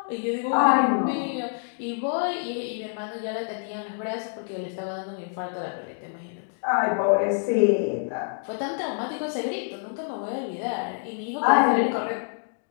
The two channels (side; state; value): right; silent; digital silence